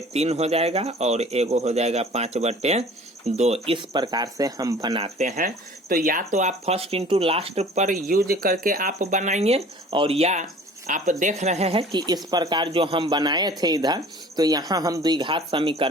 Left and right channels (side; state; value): both; normal; correlation 0.47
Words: हो जाएगा और एगो हो जाएगा 5/2। इस प्रकार से हम बनाते हैं। तो या तो आप फर्स्ट इंटू लास्ट पर यूज करके आप बनाइए, और या आप देख रहे हैं कि इस प्रकार जो हम बनाए थे इधर, तो यहाँ हम द्विघात